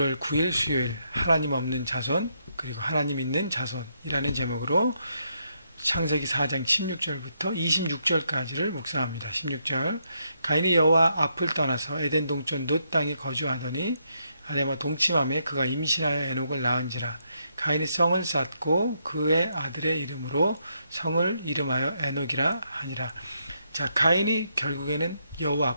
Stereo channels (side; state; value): both; inverted; correlation -0.77